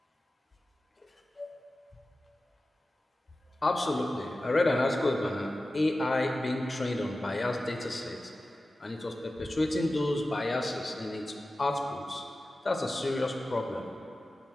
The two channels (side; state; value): both; normal; correlation 0.95